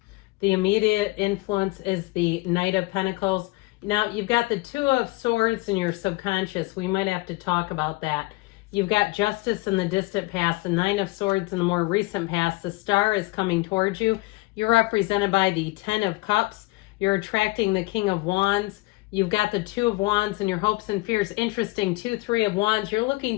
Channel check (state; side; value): quieter; right; 22.3 dB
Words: The immediate influence is the Knight of Pentacles. Now, you've got the Two of Swords in your subconscious. We might have to talk about that. You've got Justice in the distant past, the Nine of Swords in the more recent past. The Star is coming towards you. You're represented by the Ten of Cups. You're attracting the King of Wands. You've got the Two of Wands and your hopes and fears. Interesting, 2, 3 of Wands. You're looking